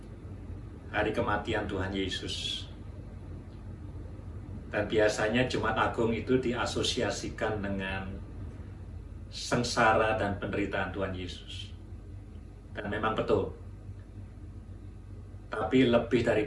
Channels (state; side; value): identical; both; correlation 1.00